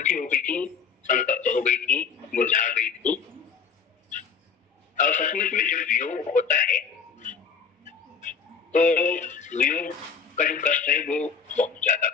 हो गई थी, संतप्त हो गई थी, मुरझा गई थी। और सचमुच में जब वियोग होता है तो वियोग का जो कष्ट है वो बहुत ज्यादा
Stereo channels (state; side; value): quieter; right; 6.0 dB